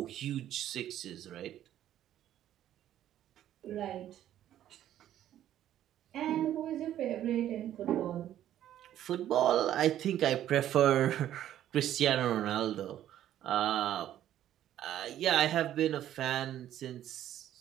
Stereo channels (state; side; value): quieter; left; 11.8 dB